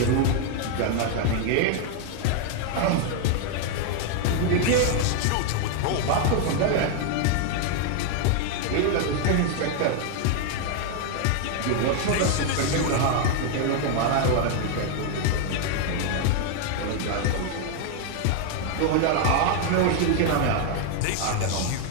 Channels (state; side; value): different; both; correlation 0.00